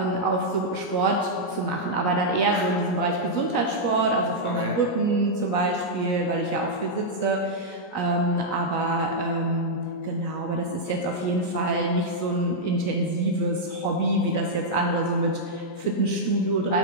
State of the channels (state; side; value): late; right; 17 ms